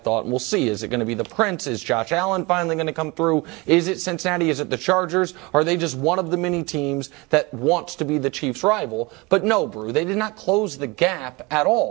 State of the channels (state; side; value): quieter; left; 25.3 dB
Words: and we'll see. Is it going to be the Prince? Is Josh Allen finally going to come through? Is it Cincinnati? Is it the Chargers? Are they just one of the many teams that wants to be the Chiefs' rival? But no, Brew, they did not close the gap at